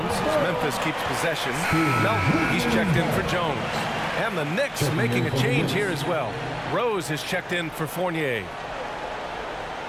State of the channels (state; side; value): identical; both; correlation 1.00